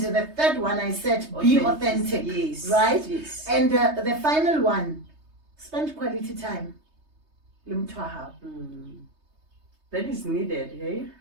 the third one I said be authentic. Yes. Right? Yes. And the final one, spend quality time. That is needed, hey?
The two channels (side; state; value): left; late; 3.2 ms